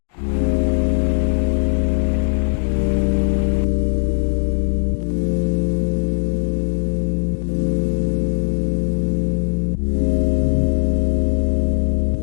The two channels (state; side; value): silent; right; digital silence